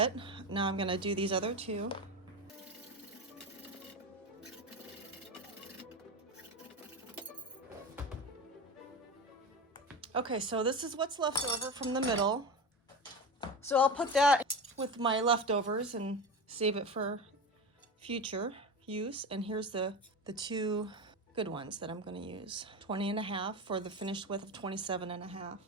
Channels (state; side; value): normal; both; correlation 0.23